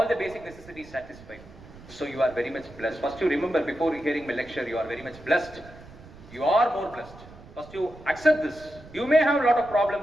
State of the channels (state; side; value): noise; right; rumble, 19 dB below the sound